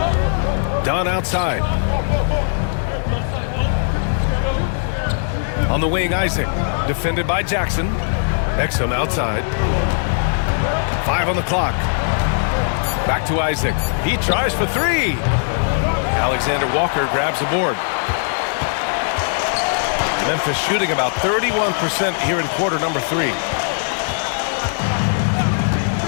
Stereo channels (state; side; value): silent; right; digital silence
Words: Dunn outside. On the wing, Isaac. Defended by Jackson. Exum outside. 5 on the clock. Back to Isaac. He tries for 3. Alexander Walker grabs the board. Memphis shooting about 31% here in quarter number 3.